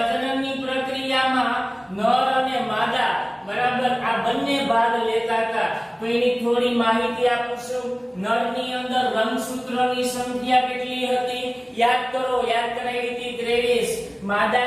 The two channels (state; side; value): identical; both; correlation 1.00